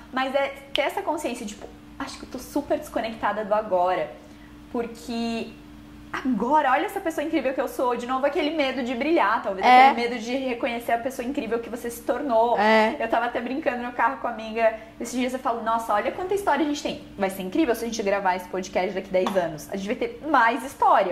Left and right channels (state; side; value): identical; both; correlation 1.00